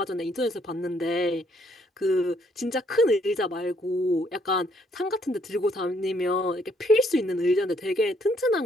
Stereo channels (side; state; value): both; normal; correlation 0.69